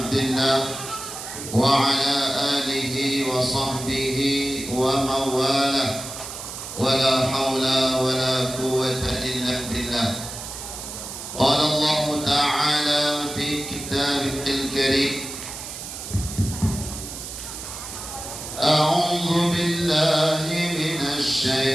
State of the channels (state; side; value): noise; right; hiss, 9 dB below the sound